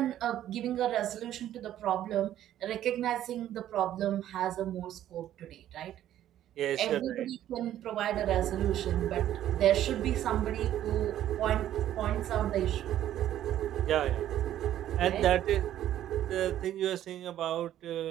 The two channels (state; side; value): quieter; left; 12.0 dB